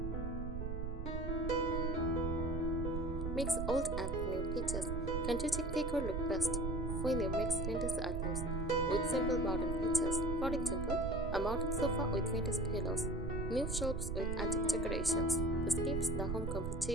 Mix old and new pieces. Country chic decor look best when you mix vintage items with simple modern pieces. For example, a modern sofa with vintage pillows, new shelves with antique decorations. This keeps the home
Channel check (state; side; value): noise; right; rumble, 2 dB below the sound